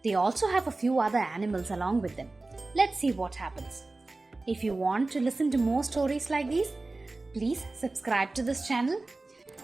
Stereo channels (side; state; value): left; quieter; 3.2 dB